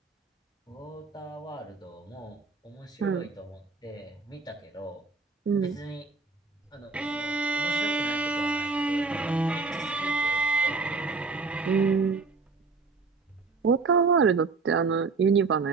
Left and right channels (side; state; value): left; quieter; 4.3 dB